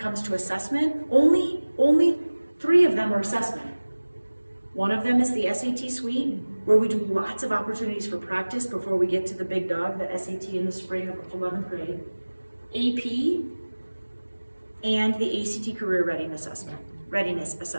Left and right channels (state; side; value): inverted; both; correlation -1.00